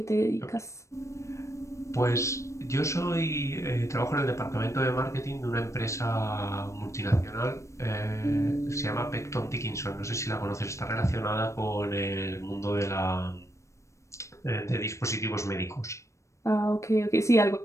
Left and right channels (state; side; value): late; right; 0.15 ms